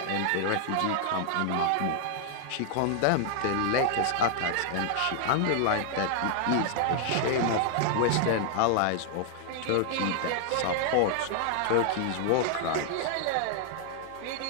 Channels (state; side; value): different; both; correlation 0.00